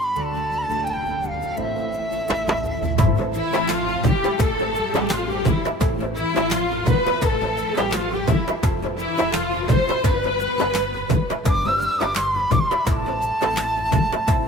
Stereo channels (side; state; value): both; normal; correlation 0.54